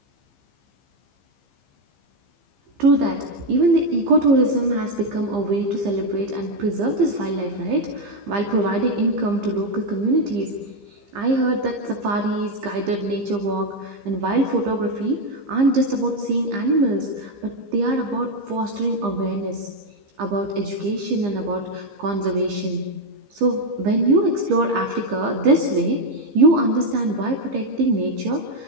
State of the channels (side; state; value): left; late; 15 ms